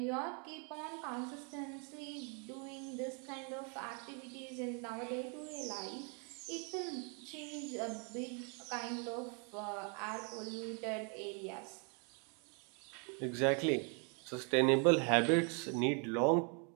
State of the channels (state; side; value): quieter; left; 37.6 dB